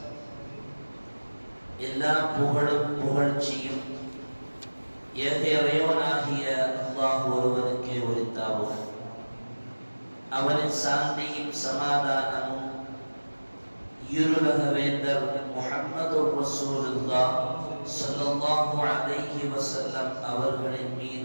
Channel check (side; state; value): both; inverted; correlation -1.00